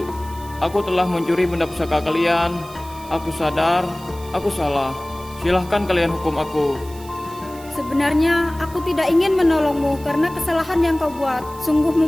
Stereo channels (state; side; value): noise; right; hiss, 20 dB below the sound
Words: Aku telah mencuri benda pusaka kalian. Aku sadar, aku salah. Silahkan kalian hukum aku. Sebenarnya aku tidak ingin menolongmu karena kesalahan yang kau buat sungguh